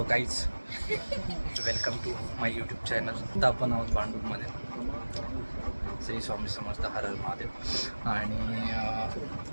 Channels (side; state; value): both; inverted; correlation -1.00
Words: guys, welcome to my YouTube channel. आता आपण आहोत भांडूपमध्ये. श्री स्वामी समर्थ, हर हर महादेव. आणि